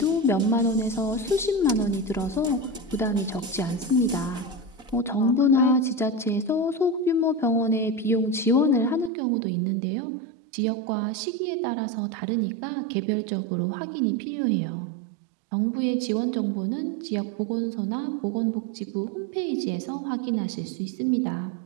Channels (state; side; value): drops out; left; at 9.1 s